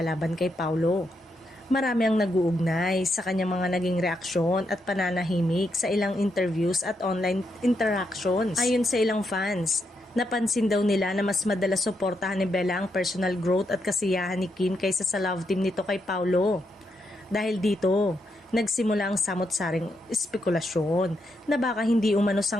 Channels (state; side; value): normal; both; correlation 0.81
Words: laban kay Paulo, marami ang nag-uugnay sa kanyang mga naging reaksyon at pananahimik sa ilang interviews at online interactions. Ayon sa ilang fans, napansin daw nila na mas madalas suportahan ni Bella ang personal growth at kasiyahan ni Kim kaysa sa love team nito kay Paulo. Dahil dito, nagsimula ang samot-saring espekulasyon na baka hindi umano